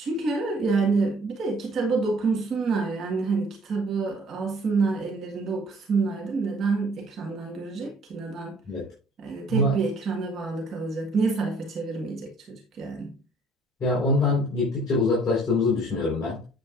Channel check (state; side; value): normal; both; correlation 0.57